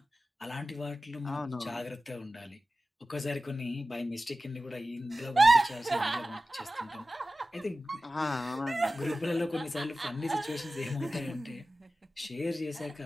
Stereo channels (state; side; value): normal; both; correlation 0.95